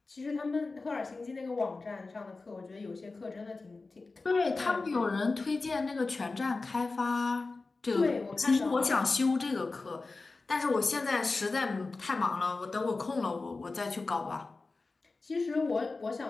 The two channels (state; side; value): quieter; right; 3.7 dB